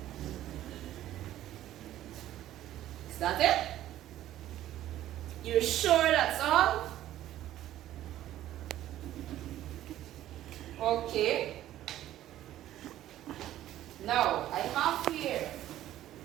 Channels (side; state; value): left; quieter; 13.2 dB